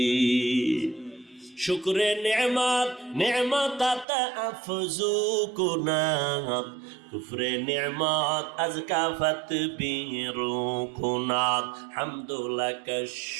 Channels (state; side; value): drops out; left; at 4.0 s